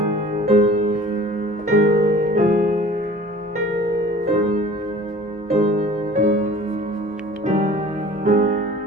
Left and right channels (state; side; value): normal; both; correlation 0.46